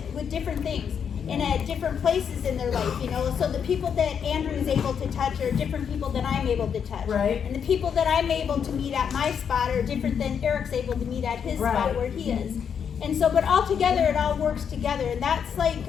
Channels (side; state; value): right; quieter; 7.5 dB